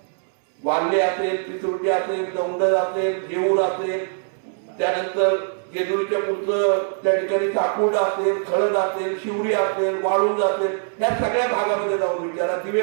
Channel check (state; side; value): silent; left; 64 dB below the other